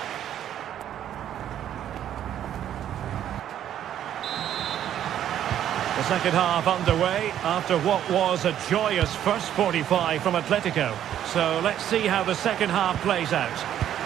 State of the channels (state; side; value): quieter; left; 10.8 dB